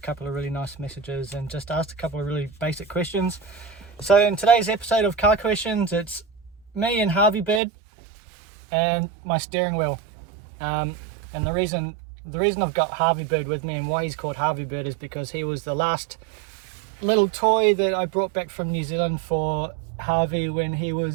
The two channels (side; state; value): left; drops out; at 7.6 s